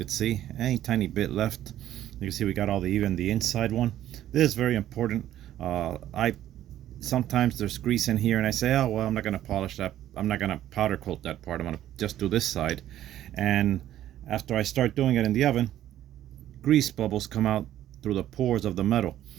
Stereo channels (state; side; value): quieter; left; 12.4 dB